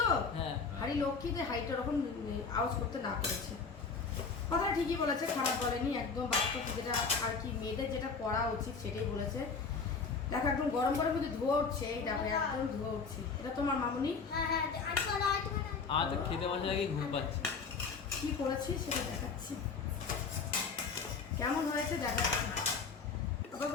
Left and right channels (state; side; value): quieter; right; 5.0 dB